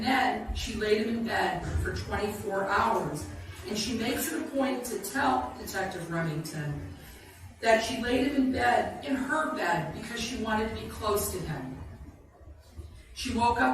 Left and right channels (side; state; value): both; identical; correlation 1.00